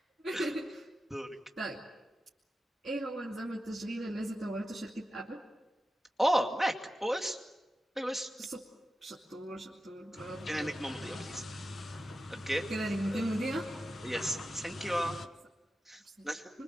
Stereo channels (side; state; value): both; normal; correlation 0.92